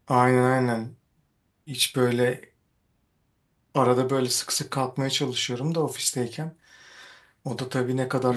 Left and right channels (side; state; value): both; identical; correlation 1.00